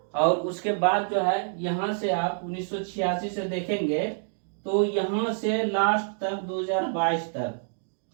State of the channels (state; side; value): silent; left; digital silence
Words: और उसके बाद जो है यहाँ से आप 1986 से देखेंगे तो यहाँ से लास्ट तक 2022 तक